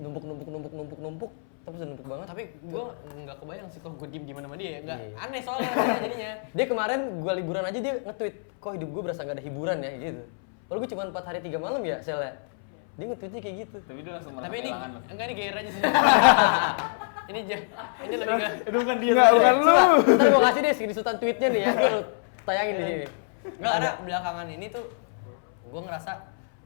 tapi udah numpuk banget. Tapi gue nggak kebayang sih kalau gue diem sama dia ya. Nggak Iya. aneh soalnya rasanya jadinya. Dia kemarin gue liburan aja dia nge-tweet, kok hidup gue berasa gak ada hiburan ya gitu. Kalau gue cuma 4 hari 3 malam ya selnya. Dia nge-tweetnya kayak gitu. Tapi dia langsung merasa Tapi ini kehilangan lo. enggak ini gair aja sih. ini lebih ke Itu bukan dia. Enggak, bukan lu. Ntar gue kasih deh screenshotan tweetnya nih ya, gue tayangin di sini. nggak ada belakangan ini tuh gue ngerasa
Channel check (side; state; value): right; silent; 61 dB below the other